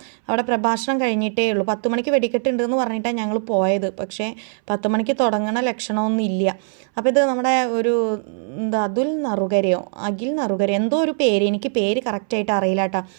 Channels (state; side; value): silent; left; 63 dB below the other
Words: അവിടെ പ്രഭാഷണം കഴിഞ്ഞിട്ടേ ഉള്ളൂ. 10 മണിക്ക് വെടിക്കെട്ടുണ്ടെന്ന് പറഞ്ഞിട്ടാണ് ഞങ്ങൾ പോയത്. പക്ഷേ 10 മണിക്ക് തുടങ്ങണ ലക്ഷണമൊന്നും ഇല്ല. അപ്പോൾ ഇത് നമ്മുടെ ഒരു അഖിൽ നറുകരയോ എന്തോ ഒരു പേര്, എനിക്ക് പേര് കറക്റ്റായിട്ട് അറിയില്ല കേട്ടോ.